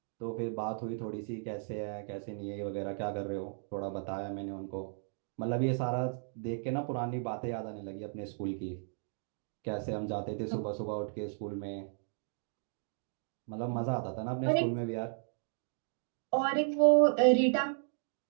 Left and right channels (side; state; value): left; silent; digital silence